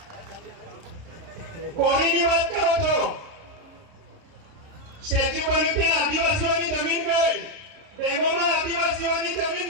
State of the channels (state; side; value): late; left; 30 ms